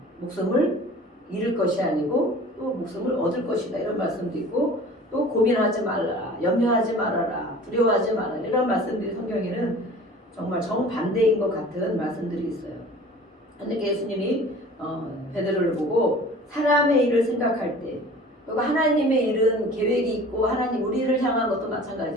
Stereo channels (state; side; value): normal; both; correlation 0.44